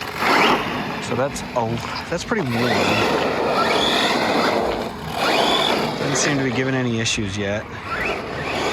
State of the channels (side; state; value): both; identical; correlation 1.00